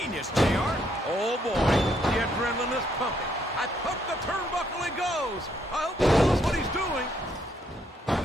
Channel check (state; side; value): normal; both; correlation 0.72